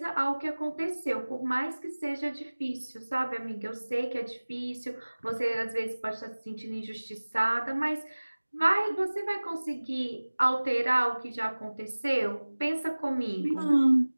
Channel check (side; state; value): both; inverted; correlation -1.00